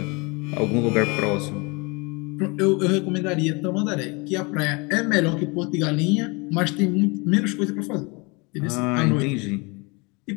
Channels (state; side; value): quieter; right; 28.4 dB